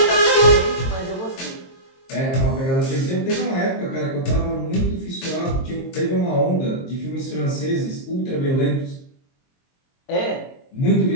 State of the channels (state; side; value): late; right; 22 ms